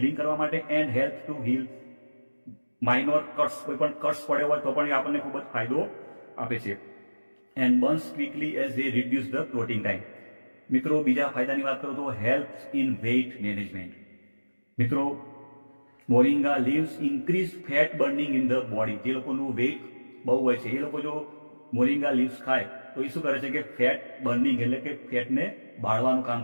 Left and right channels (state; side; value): inverted; both; correlation -1.00